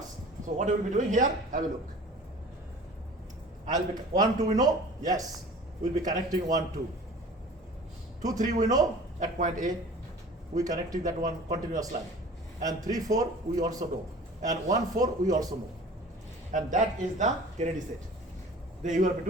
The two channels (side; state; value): both; normal; correlation 0.43